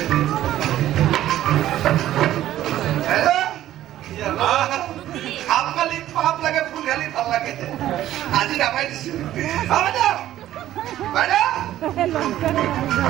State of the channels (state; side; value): quieter; left; 13.2 dB